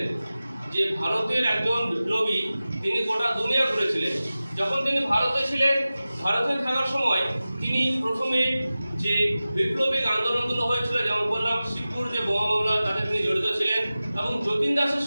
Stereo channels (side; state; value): both; inverted; correlation -0.96